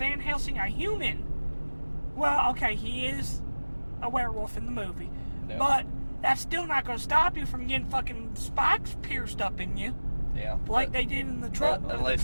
Helsing, a human? Well, okay, he is a werewolf in the movie, but that's still not going to stop you from getting fucking spikes pierced up in you. Yeah. Like they did in the truck. Unless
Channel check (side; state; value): both; inverted; correlation -1.00